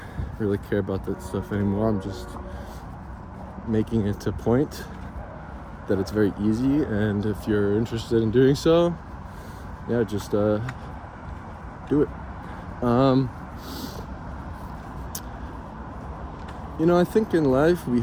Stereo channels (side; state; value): both; identical; correlation 1.00